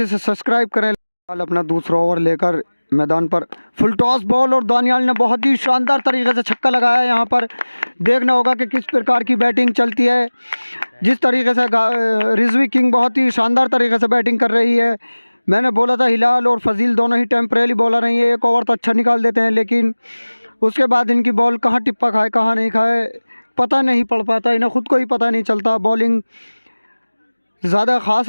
सब्सक्राइब करें। अपना दूसरा ओवर लेकर मैदान पर फुल टॉस बॉल और दानियाल ने बहुत ही शानदार तरीके से छक्का लगाया। यहाँ पर देखना होगा कि किस प्रकार की बैटिंग चलती है। जिस तरीके से रिजवी किंग बहुत ही शानदार तरीके से बैटिंग कर रही है। मैंने बोला था हिलाल और फजील दोनों ही टेम्परेरी बॉलर हैं, ये एक ओवर तो अच्छा निकाल देते हैं, लेकिन उसके बाद इनकी बॉल कहाँ टिप्पा खाए कहाँ नहीं खाए पता नहीं पड़ पाता। इन्हें ख़ुद को ही पता नहीं चलता। बॉलिंग ज़्यादा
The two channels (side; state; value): both; inverted; correlation -1.00